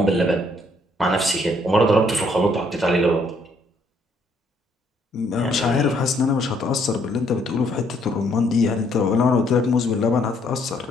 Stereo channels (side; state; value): both; normal; correlation 0.68